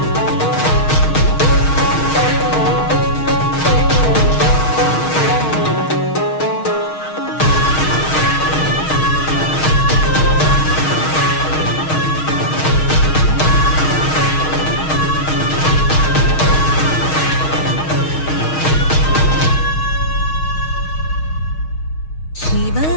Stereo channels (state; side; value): late; right; 6.4 ms